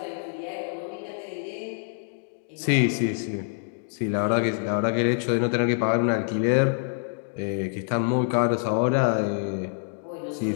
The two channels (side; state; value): right; silent; digital silence